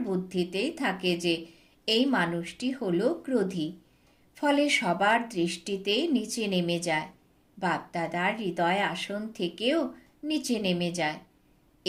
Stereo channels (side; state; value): both; identical; correlation 1.00